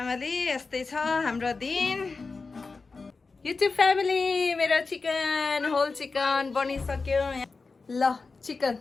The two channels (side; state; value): right; quieter; 4.2 dB